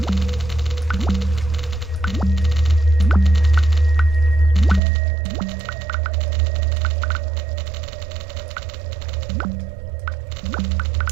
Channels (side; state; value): left; drops out; at 4.8 s